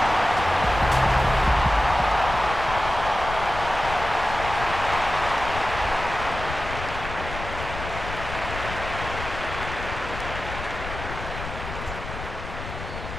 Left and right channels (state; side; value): noise; left; rumble, 9 dB below the sound